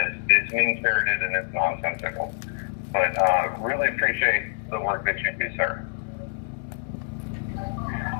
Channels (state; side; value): silent; right; digital silence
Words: it's mean-spirited and it's nonsensical. But really appreciate the work that you do, sir.